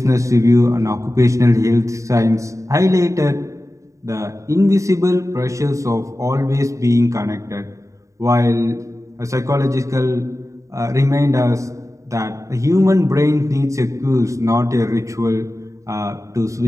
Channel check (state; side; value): late; left; 0.15 ms